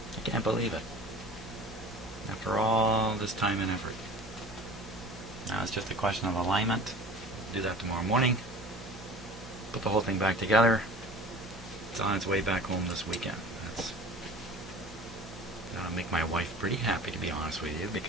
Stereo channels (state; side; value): normal; both; correlation 0.41